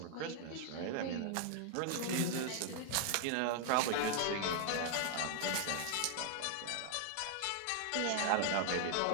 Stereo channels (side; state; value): both; different; correlation 0.00